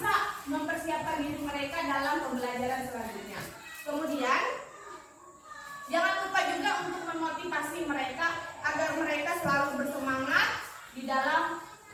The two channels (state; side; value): identical; both; correlation 1.00